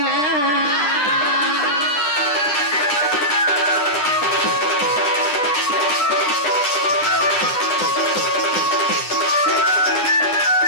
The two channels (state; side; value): late; right; 10 ms